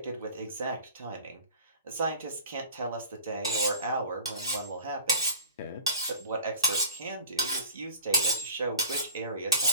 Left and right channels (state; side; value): inverted; both; correlation -0.42